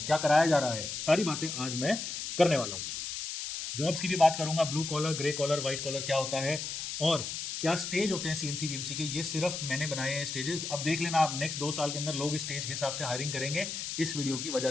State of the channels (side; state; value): left; noise; hiss, 5 dB below the sound